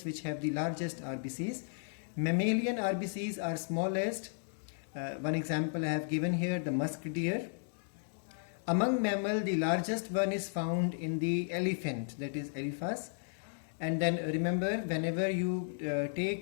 which have the largest RBCs. Mammalian RBCs are smallest. One example I have given here, the musk deer. Among mammal, the largest one is found in the elephant, that is Elephas. And then remember, whenever you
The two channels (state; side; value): silent; right; digital silence